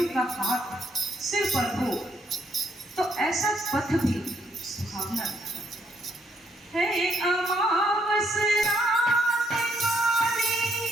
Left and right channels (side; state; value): both; normal; correlation 0.73